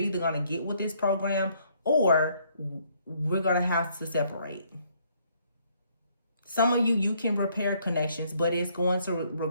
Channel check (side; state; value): both; inverted; correlation -0.67